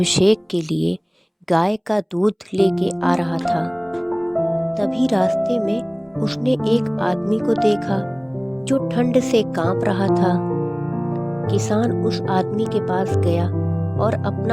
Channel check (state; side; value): identical; both; correlation 1.00